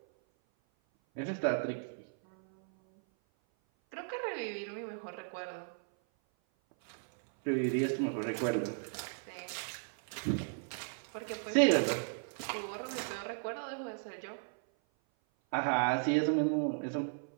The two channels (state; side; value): silent; left; 54 dB below the other